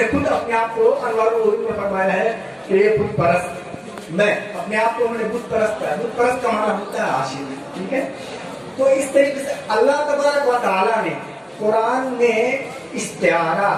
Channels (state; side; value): identical; both; correlation 1.00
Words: خود اپنے آپ کو انوار العلوم میں فرمایا ہے کہ یہ بت پرست، میں اپنے آپ کو بت پرست کا، بت پرست کا معنی ہوتا ہے عاشق، ٹھیک ہے۔ تو اس طریقے سے اللہ تبارک و تعالیٰ نے قرآن میں استعارہ،